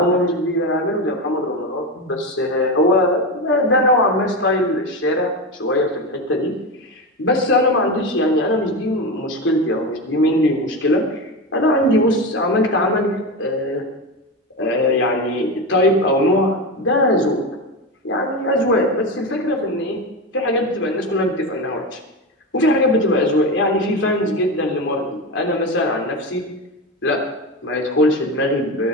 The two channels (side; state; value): both; normal; correlation 0.19